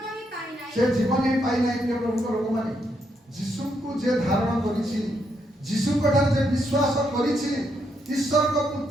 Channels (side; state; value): both; normal; correlation 0.78